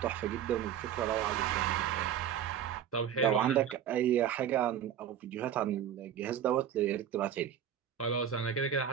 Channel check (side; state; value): left; quieter; 9.5 dB